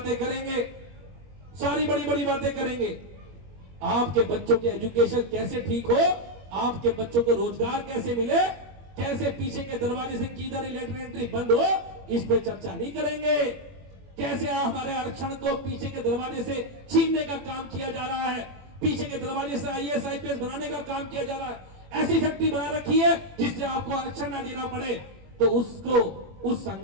करेंगे, सारी बड़ी बड़ी बातें करेंगे। आपके बच्चों के एजुकेशन कैसे ठीक हो, आपके बच्चों को रोजगार कैसे मिले, कैसे पीछे के दरवाजे से किधर लेटर एंट्री बंद हो, इस पे चर्चा नहीं करेंगे। कैसे हमारे आरक्षण को पीछे के दरवाजे से छीनने का काम किया जा रहा है, पीछे के दरवाजे से आईएएस आईपीएस बनाने का काम किया जा रहा है। ऐसी फैक्ट्री बना रखी है जिससे आपको आरक्षण ना देना पड़े। तो उसको, उस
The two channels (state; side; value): late; left; 21 ms